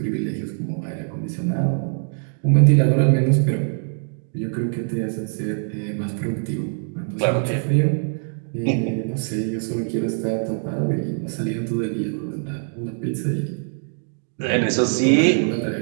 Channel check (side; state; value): left; silent; 58 dB below the other